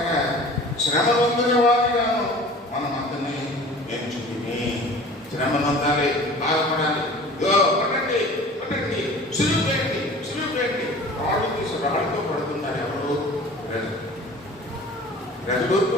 శ్రమ పొందిన వారిగాను మనం అందరినీ ఎంచుకుని శ్రమ పొందాలి, బాధపడాలి. పడండి సులువు చేయండి. రాళ్ళు తీసి రాళ్ళతో పడుతున్నారు. ఎవరు? ప్రజలు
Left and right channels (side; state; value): both; normal; correlation 0.43